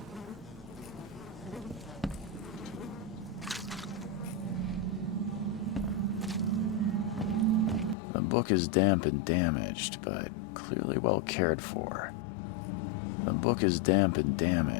The book is damp and damaged, but clearly well cared for. The book is damp and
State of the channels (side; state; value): right; drops out; at 8.0 s